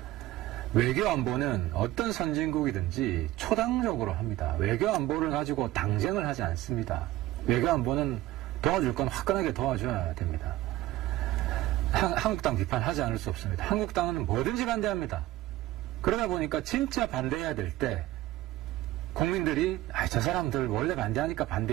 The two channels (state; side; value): quieter; left; 16.0 dB